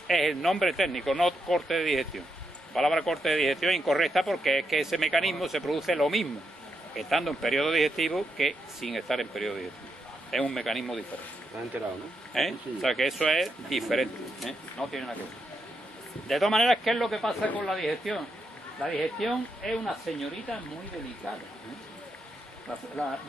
es el nombre técnico, no corte de digestión. La palabra corte de digestión es incorrecta porque es que ese mecanismo se produce lo mismo estando en periodo digestivo que sin estar en periodo digestivo. Es un mecanismo diferente. ¿Te has enterado, no? O sea que eso es diferente, no tiene nada que ver. De todas maneras, ¿qué es lo que pasa con la digestión? La digestión es una señorita muy delicada.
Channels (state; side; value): normal; both; correlation 0.82